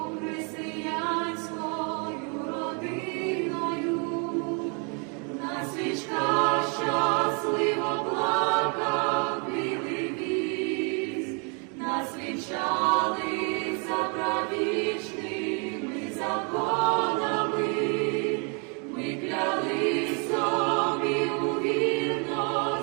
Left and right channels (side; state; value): left; quieter; 36.4 dB